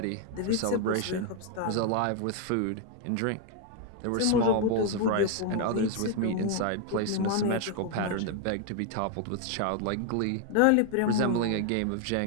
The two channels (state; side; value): different; both; correlation 0.01